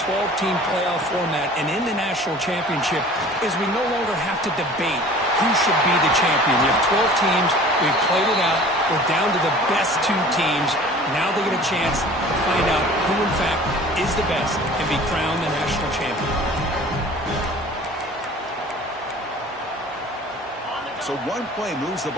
12-team playoff format and in the national championship is we no longer have to debate who should be the champion. You have 12 teams. We've played it out. We're down to the best 2 teams. Now they get a chance to find out who, in fact, is the best and be crowned the national champion. So one play moves the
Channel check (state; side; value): normal; both; correlation 0.45